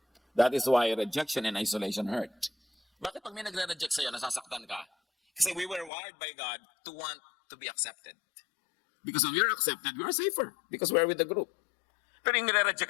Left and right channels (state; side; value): drops out; right; at 5.9 s